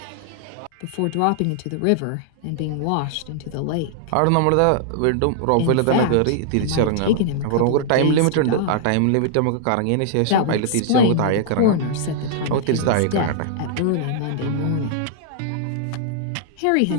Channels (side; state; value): both; different; correlation -0.01